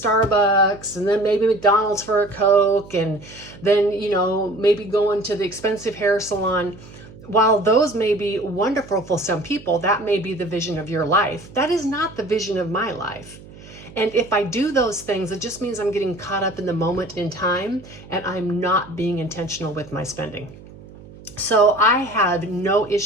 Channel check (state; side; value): noise; right; hum, 19 dB below the sound